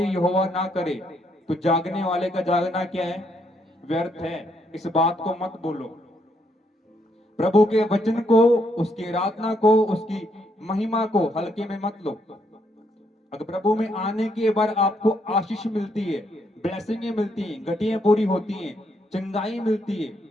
यहोवा ना करे तो जागने वाले का जागना क्या है? व्यर्थ है। इस बात को मत बोलो। प्रभु के वचन को, उसकी आराधना को, उसकी महिमा को हल्के में मत लो। अगर प्रभु में आने के बाद आपको आशीष मिलती है, ब्लेसिंगें मिलती हैं, घटियां पूरी होती हैं, चंगाई मिलती है,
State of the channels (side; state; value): both; normal; correlation 0.74